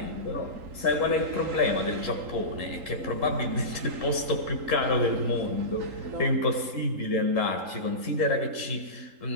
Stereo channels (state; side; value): late; left; 3.8 ms